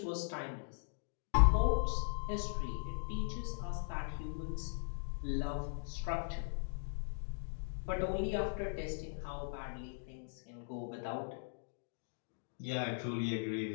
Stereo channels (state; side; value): silent; right; digital silence